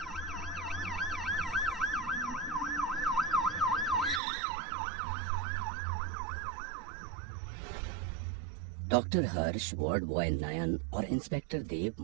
डॉक्टर हर्ष, वार्ड बॉय नयन और इंस्पेक्टर देव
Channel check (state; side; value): drops out; left; at 4.2 s